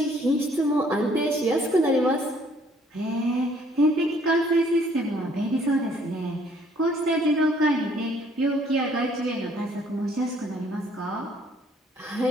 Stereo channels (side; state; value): both; normal; correlation 0.62